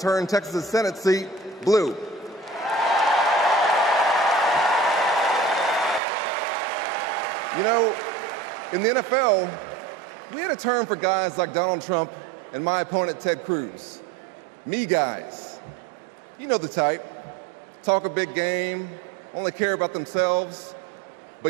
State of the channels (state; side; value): drops out; left; at 6.0 s